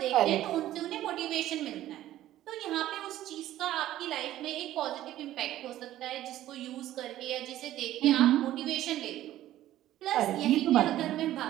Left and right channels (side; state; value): left; quieter; 13.7 dB